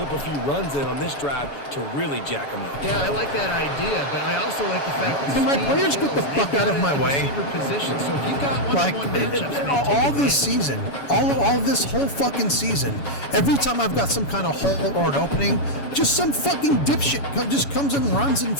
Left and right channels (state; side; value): late; right; 7.1 ms